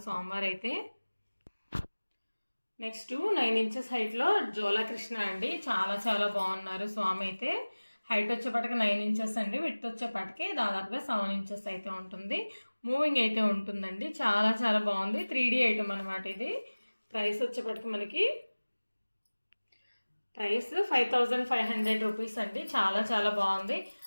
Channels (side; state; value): both; inverted; correlation -1.00